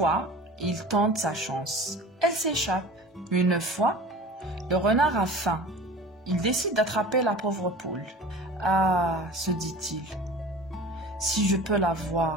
il tente sa chance. Elle s'échappe. Une fois, le renard a faim. Il décide d'attraper la pauvre poule. « Ah, se dit-il, si je peux la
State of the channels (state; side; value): normal; both; correlation 0.39